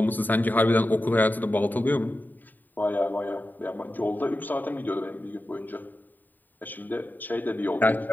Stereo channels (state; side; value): late; right; 0.088 ms